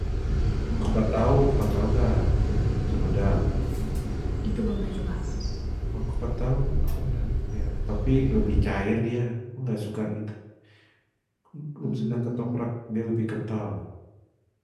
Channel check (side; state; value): both; identical; correlation 1.00